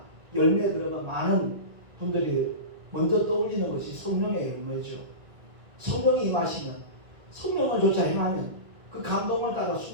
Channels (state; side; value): late; left; 1.9 ms